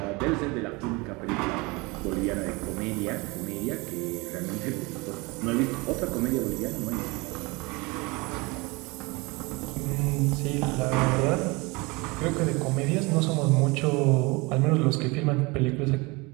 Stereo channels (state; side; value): quieter; left; 25.6 dB